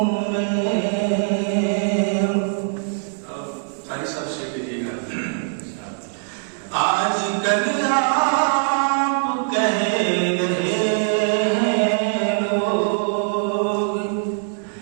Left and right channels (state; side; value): silent; left; digital silence